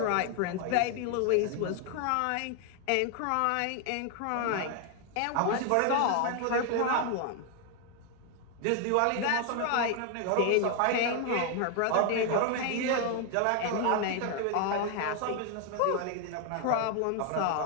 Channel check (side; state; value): both; different; correlation 0.01